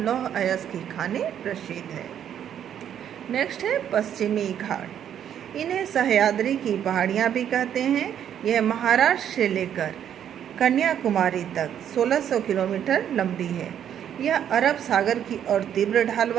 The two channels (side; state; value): left; quieter; 9.6 dB